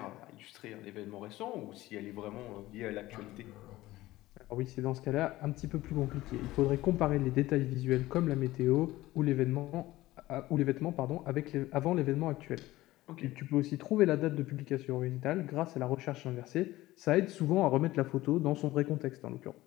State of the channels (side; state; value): right; quieter; 17.1 dB